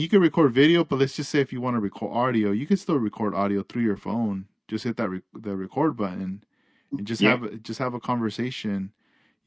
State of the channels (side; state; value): both; identical; correlation 1.00